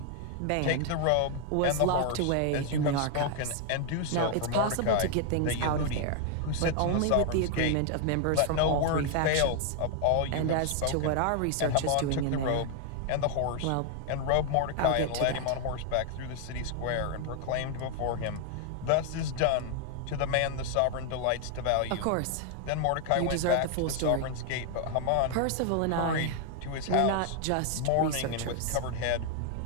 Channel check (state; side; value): different; both; correlation 0.00